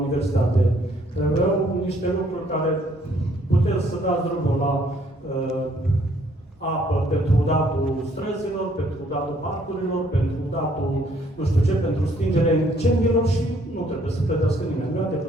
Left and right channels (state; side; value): normal; both; correlation 0.65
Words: universitate. Aveau niște lucruri care puteți să dați drumul la apă pentru datul străzilor, pentru datul parcurilor, pentru datul nu știu ce, pentru stingerea incendiilor și nu trebuie să plătească nimeni. Nu e